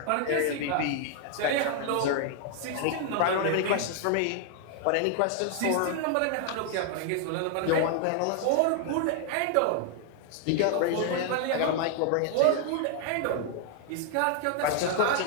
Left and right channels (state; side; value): different; both; correlation 0.00